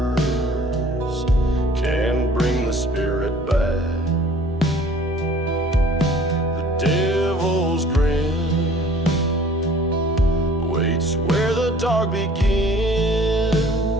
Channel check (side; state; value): both; normal; correlation 0.52